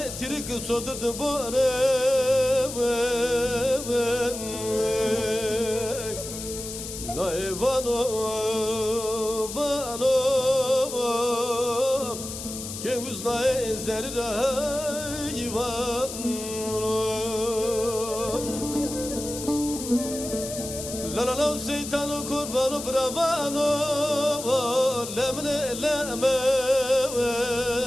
tirik sodurdu bore Na evano vano Ke uzna ezerira ivano La la la şeytano kurvano bravano Lemne lemen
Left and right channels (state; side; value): noise; left; hiss, 9 dB below the sound